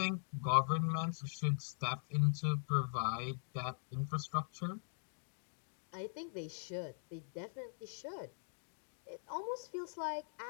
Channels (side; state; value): right; silent; digital silence